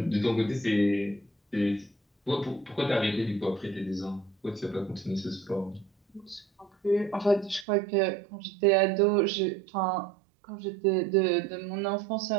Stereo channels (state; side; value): drops out; left; at 7.7 s